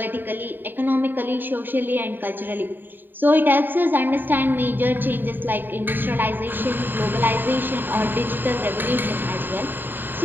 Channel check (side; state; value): left; late; 0.092 ms